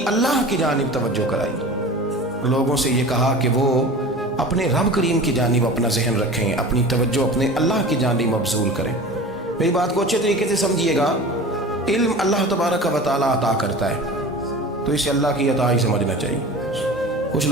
اللہ کی جانب توجہ کرائی، لوگوں سے یہ کہا کہ وہ اپنے رب کریم کی جانب اپنا ذہن رکھیں، اپنی توجہ اپنے اللہ کی جانب مبذول کریں۔ میری بات کو اچھے طریقے سے سمجھیے گا، علم اللہ تبارک و تعالیٰ عطا کرتا ہے تو اسے اللہ کی عطا ہی سمجھنا چاہیے۔ کچھ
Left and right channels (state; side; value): normal; both; correlation 0.36